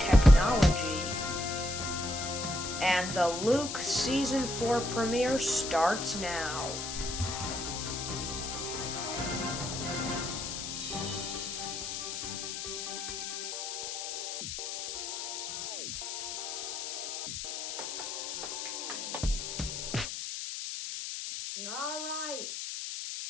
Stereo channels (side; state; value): left; noise; hiss, 5 dB below the sound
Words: and the Luke Season 4 premiere starts now. Alright,